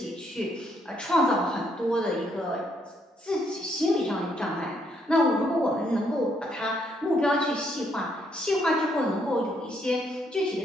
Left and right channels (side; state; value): both; normal; correlation 0.72